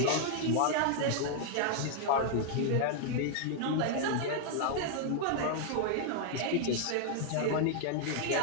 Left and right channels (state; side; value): different; both; correlation 0.00